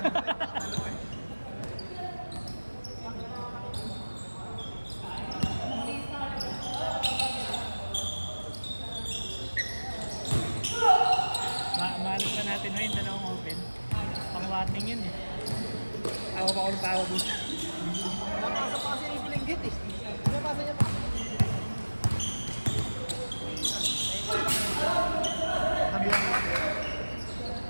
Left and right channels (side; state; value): both; inverted; correlation -1.00